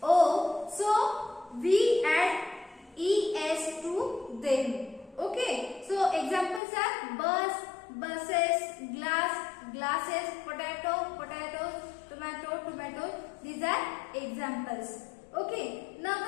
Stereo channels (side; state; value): right; drops out; at 6.6 s